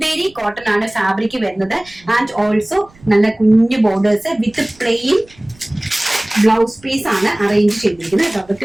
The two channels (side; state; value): right; noise; rumble, 27 dB below the sound